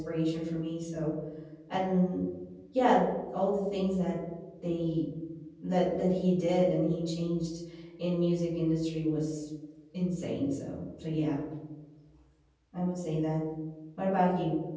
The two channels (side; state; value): both; identical; correlation 1.00